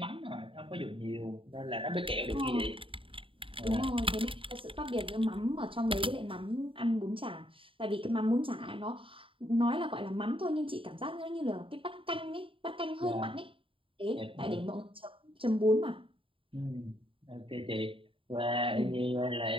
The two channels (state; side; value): late; left; 0.25 ms